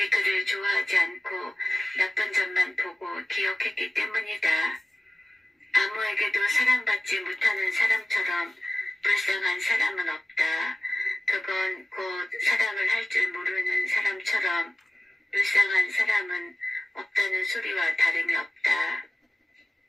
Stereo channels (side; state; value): both; normal; correlation 0.97